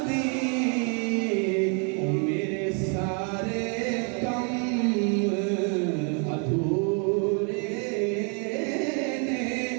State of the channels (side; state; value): left; quieter; 38.3 dB